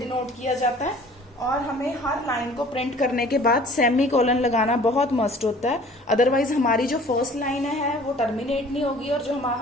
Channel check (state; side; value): normal; both; correlation 0.50